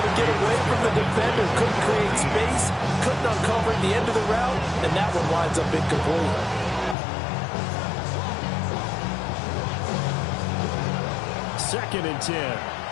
to get away from the defender, couldn't create space, couldn't uncover the end of the route, and that one winds up incomplete. Second and 10.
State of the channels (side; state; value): right; drops out; at 7.0 s